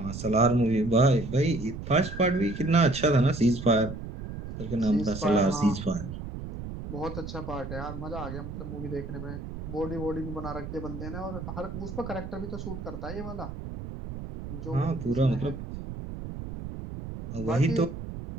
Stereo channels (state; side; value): noise; right; rumble, 9 dB below the sound